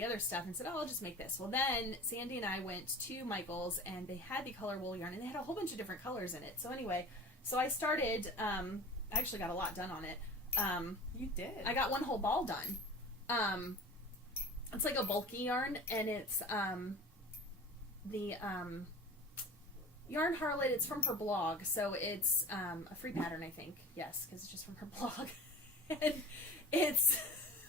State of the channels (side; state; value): both; normal; correlation 0.38